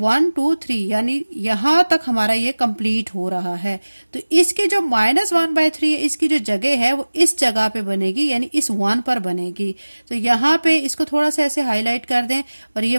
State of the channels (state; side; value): inverted; both; correlation -1.00